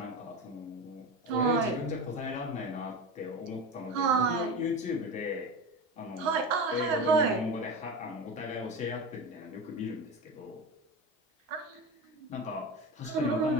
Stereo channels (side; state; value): both; normal; correlation 0.25